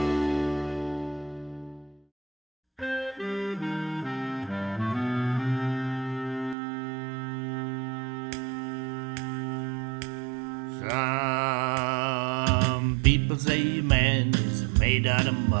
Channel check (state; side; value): drops out; left; at 6.6 s